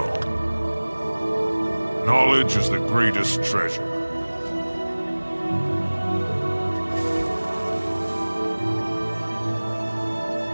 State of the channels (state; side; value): inverted; both; correlation -1.00